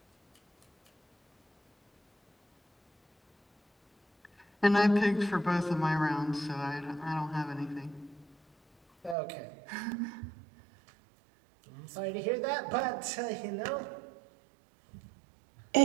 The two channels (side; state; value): left; drops out; at 9.2 s